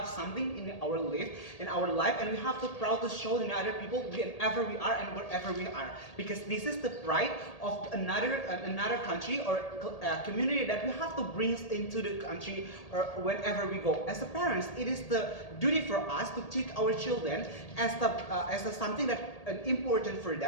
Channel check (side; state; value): right; late; 1.8 ms